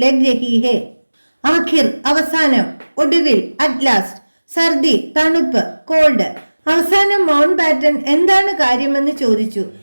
लग रही है. आखिर അവസാനം, ഒടുവിൽ, അറ്റ് ലാസ്റ്റ്. സർദി തണുപ്പ്, കോൾഡ്. അവസാനം മൗണ്ട് ബാറ്റൻ എന്താണ് കാര്യമെന്ന് ചോദിച്ചു.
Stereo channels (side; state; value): both; inverted; correlation -1.00